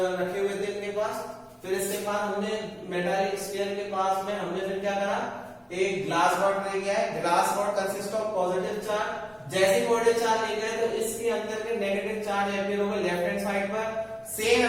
रखे हुए थे इनके पास। फिर इसके बाद हमने मेटालिक स्फीयर के पास में हमने फिर क्या करा, एक ग्लास रॉड ले गया है। Glass rod consist of positive charge. जैसे पॉजिटिव चार्ज ले गए तो इसके अंदर के नेगेटिव चार्ज एपियर हो गए लेफ्ट हैंड साइड पर, सेम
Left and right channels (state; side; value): identical; both; correlation 1.00